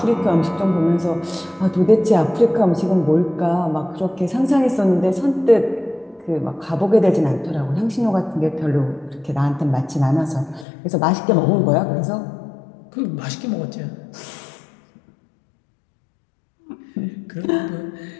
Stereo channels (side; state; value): right; drops out; at 10.7 s